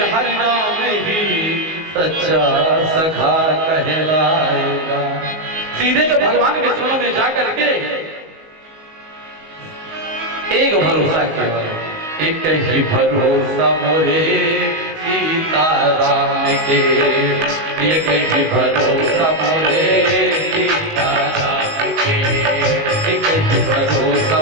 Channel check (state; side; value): late; left; 19 ms